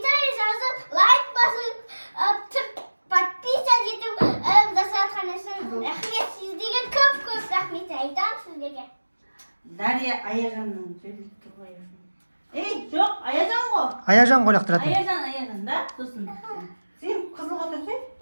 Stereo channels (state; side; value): inverted; both; correlation -1.00